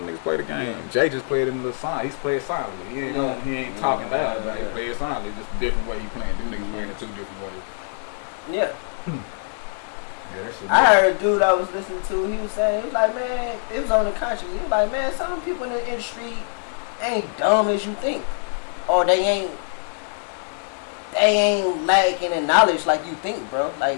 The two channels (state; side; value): silent; right; 63 dB below the other